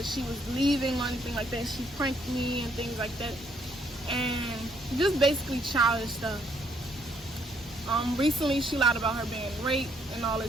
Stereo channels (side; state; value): both; normal; correlation 0.69